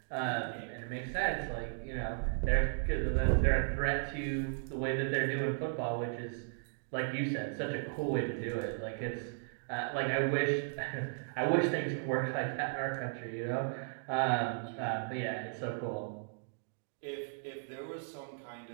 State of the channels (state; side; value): silent; left; digital silence